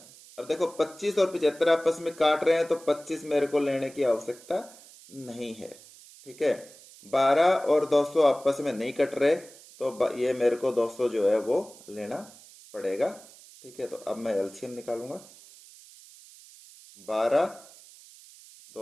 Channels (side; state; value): right; noise; hiss, 21 dB below the sound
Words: अब देखो 25 और 75 आपस में काट रहे हैं तो 25 मेरे को लेने की आवश्यकता नहीं है, ठीक है। 12 और 200 आपस में नहीं कट रहे तो ये मेरे को 200 जो है वो लेना पड़ेगा, ठीक है। तो अब मैं एलसीएम निकालूंगा। 12,